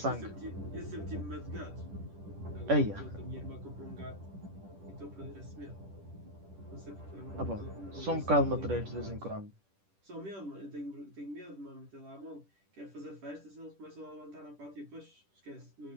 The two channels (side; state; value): left; late; 10 ms